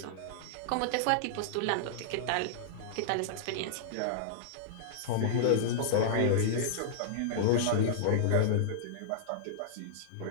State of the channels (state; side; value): different; both; correlation -0.02